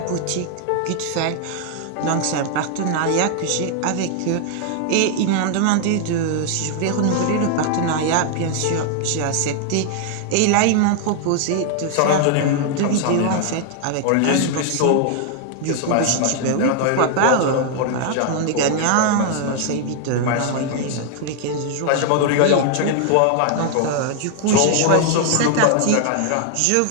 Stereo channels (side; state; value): both; different; correlation 0.00